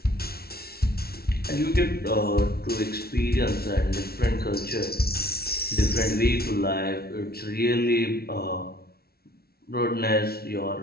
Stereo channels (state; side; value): late; right; 0.45 ms